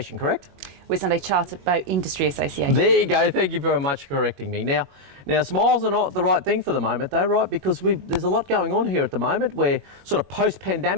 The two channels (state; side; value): late; left; 21 ms